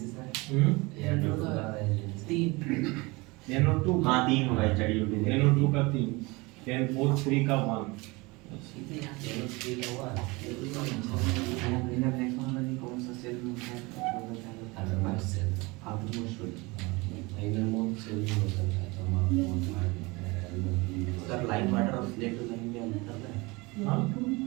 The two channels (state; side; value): quieter; left; 24.7 dB